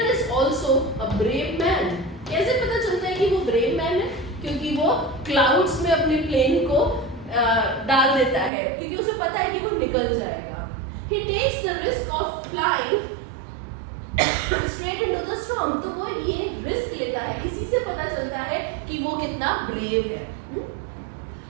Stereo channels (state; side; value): drops out; left; at 8.5 s